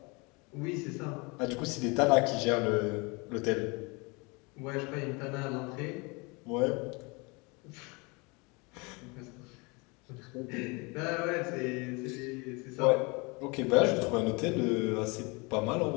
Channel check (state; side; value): quieter; right; 28.3 dB